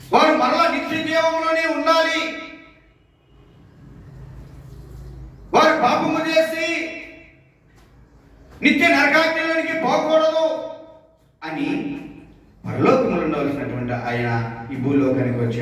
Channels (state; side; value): identical; both; correlation 1.00